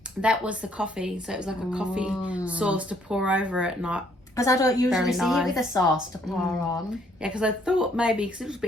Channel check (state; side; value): normal; both; correlation 0.66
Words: That was the coffee. So it was like a coffee sauce to pour over it, not. Because I don't usually see nice. it with a sauce to pour on. Yeah, because I thought maybe, because it was a